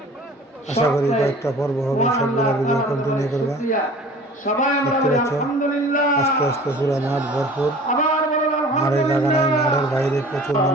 আশা করি কয়েকটা পর্ব হবে, সবগুলো ভিডিও কন্টিনিউ করবা। দেখতে পাচ্ছ আস্তে আস্তে পুরো মাঠ ভরপুর। মাঠের জায়গা নাই, মাঠের বাইরে প্রচুর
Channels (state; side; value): normal; both; correlation 0.45